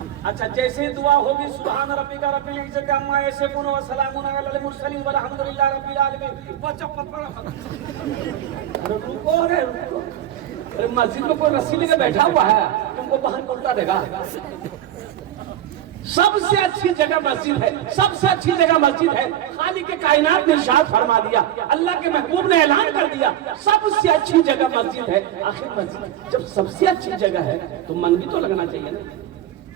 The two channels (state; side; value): quieter; left; 11.6 dB